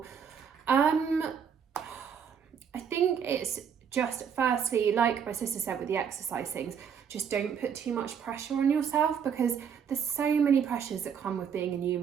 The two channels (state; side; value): quieter; left; 7.5 dB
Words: I think it's just, firstly, like my sister said with the exercise things, just don't put too much pressure on yourself, because there's so many pressures that come with being a new